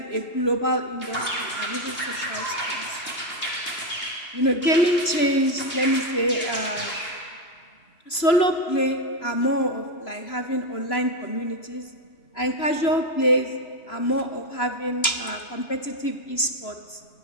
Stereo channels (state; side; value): late; right; 3.0 ms